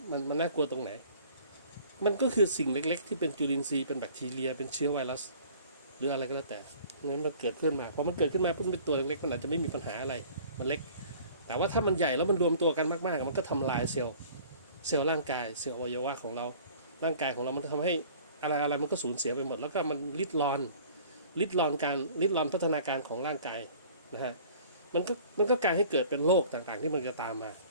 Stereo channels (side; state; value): both; inverted; correlation -0.49